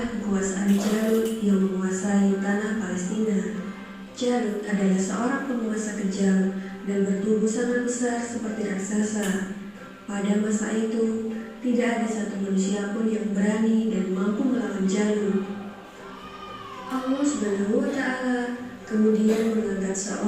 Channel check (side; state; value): both; identical; correlation 1.00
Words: kekuasaan Jalut yang menguasai tanah Palestina. Jalut adalah seorang penguasa kejam dan bertubuh sangat besar seperti raksasa. Pada masa itu, tidak ada satu manusia pun yang berani dan mampu melawan Jalut. Allah Subhanahu wa Ta'ala kemudian mengangkat